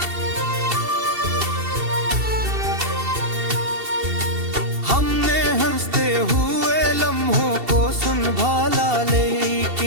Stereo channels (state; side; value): late; left; 2.7 ms